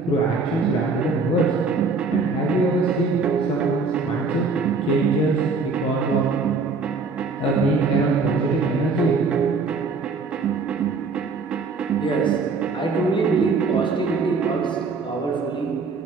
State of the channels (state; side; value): quieter; left; 4.3 dB